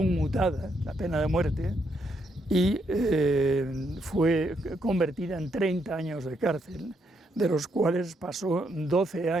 la pena de muerte, y fue convertida en 30 años de cárcel, de los cuales pasó 12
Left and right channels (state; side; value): normal; both; correlation 0.76